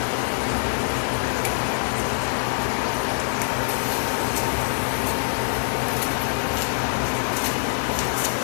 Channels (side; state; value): right; silent; 62 dB below the other